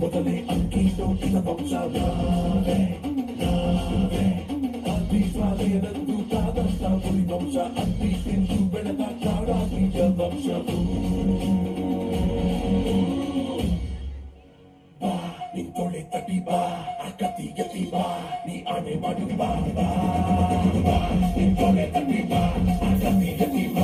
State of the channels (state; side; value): identical; both; correlation 1.00